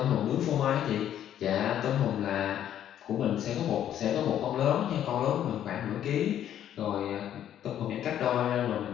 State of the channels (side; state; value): right; quieter; 10.7 dB